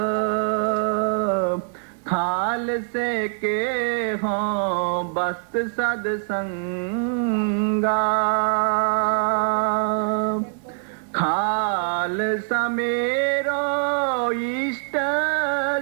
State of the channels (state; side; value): silent; left; digital silence